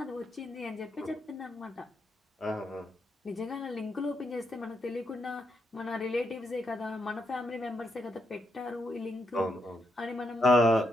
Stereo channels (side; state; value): both; normal; correlation 0.80